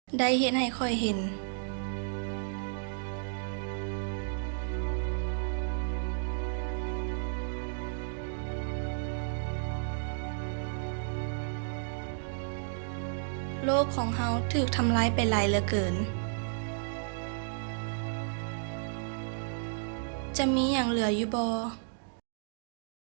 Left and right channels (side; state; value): left; silent; digital silence